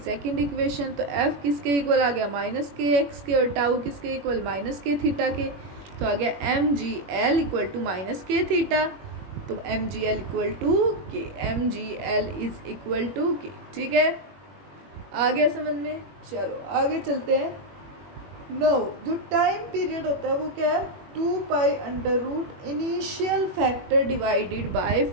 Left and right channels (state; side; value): late; left; 21 ms